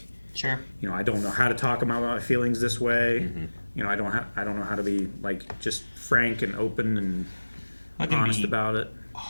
sure, I don't know how to talk about my feelings this way. I don't know how to be like just frank and open and honest about it.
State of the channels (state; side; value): inverted; both; correlation -1.00